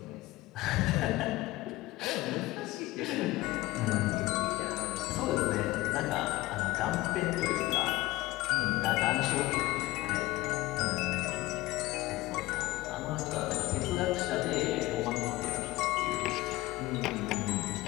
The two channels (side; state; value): right; quieter; 18.7 dB